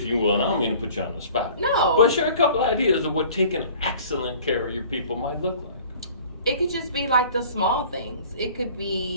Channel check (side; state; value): both; inverted; correlation -0.48